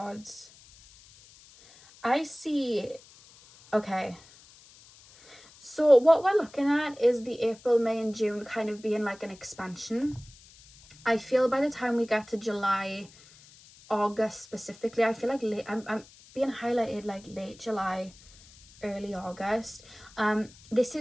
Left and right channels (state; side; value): noise; left; hiss, 24 dB below the sound